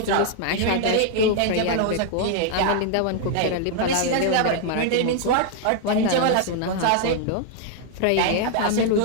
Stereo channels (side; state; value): both; different; correlation 0.00